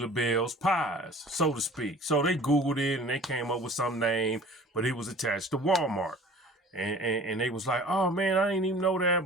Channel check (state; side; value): normal; both; correlation 0.46